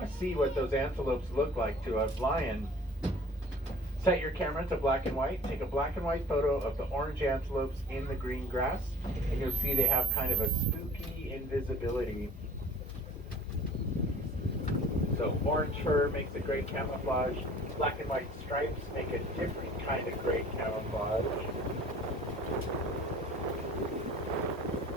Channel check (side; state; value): both; normal; correlation 0.48